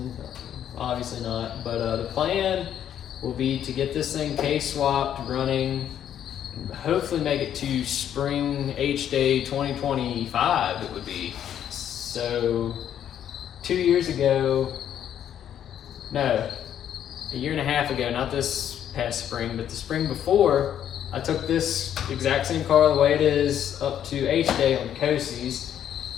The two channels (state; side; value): quieter; right; 10.0 dB